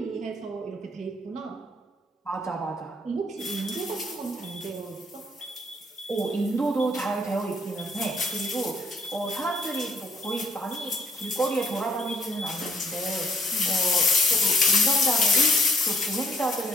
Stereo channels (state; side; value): normal; both; correlation 0.67